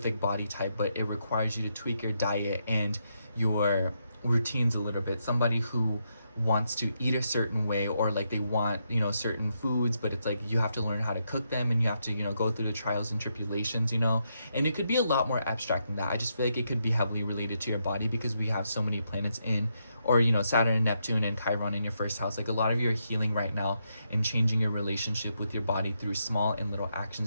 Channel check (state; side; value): inverted; both; correlation -0.80